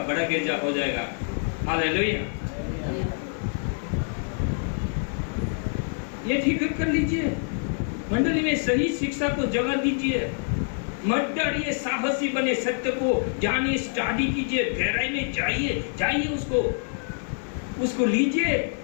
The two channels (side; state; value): right; silent; 61 dB below the other